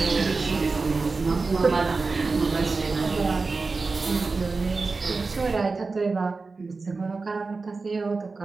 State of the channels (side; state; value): left; quieter; 4.0 dB